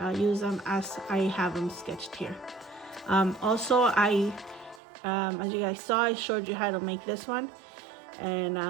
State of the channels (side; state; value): left; drops out; at 4.8 s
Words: use them as I have them sketched here. Also, as you guys saw, I showed you how to make this one. And